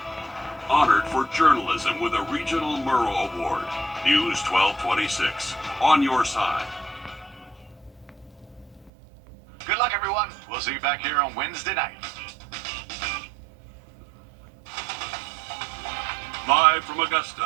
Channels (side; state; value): left; drops out; at 8.9 s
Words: Honored for journalism with a Regional Murrow Award. News 1226. On your side. Good luck, everyone. We'll see you back here on Wednesday night. Live from